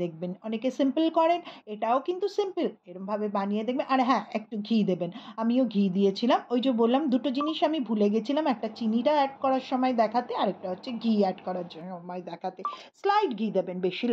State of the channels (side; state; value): both; identical; correlation 1.00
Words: দেখবেন। অনেকে সিম্পল করেন, এটাও কিন্তু সিম্পল। এরকমভাবে বানিয়ে দেখবেন। আর হ্যাঁ, একটু ঘি দেবেন। আমিও ঘি দিয়েছিলাম। ওই যে বললাম দুটো জিনিস আমি ভুলে গেছিলাম, একটা চিনিটা অ্যাড করার সময় দেখাতে, আরেকটা হচ্ছে ঘি অ্যাড করার সময় দেখাতে। স্লাইড ঘি দেবেন, বেশি